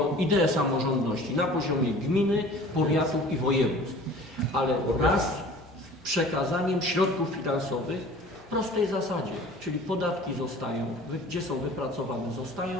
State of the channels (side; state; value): both; normal; correlation 0.45